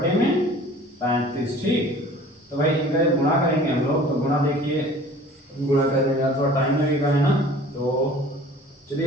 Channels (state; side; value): normal; both; correlation 0.47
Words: ठीक, तो भाई इनका गुणा करेंगे हम लोग, तो गुणा देखिए गुणा करने में थोड़ा टाइम लगेगा है ना, तो चलिए